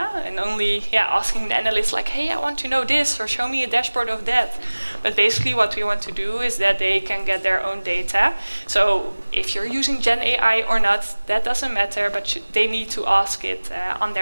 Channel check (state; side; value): inverted; both; correlation -1.00